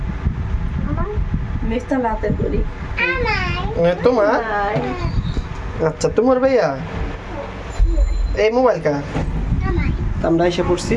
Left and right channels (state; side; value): identical; both; correlation 1.00